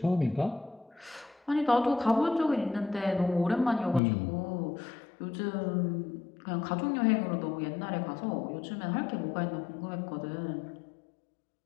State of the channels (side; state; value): right; drops out; at 4.0 s